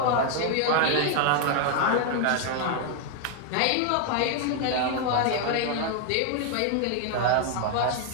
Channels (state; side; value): different; both; correlation 0.00